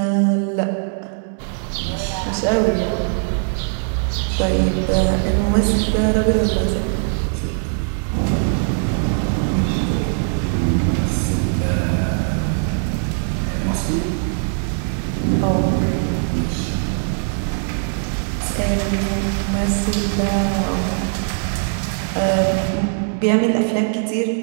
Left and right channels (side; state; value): left; silent; digital silence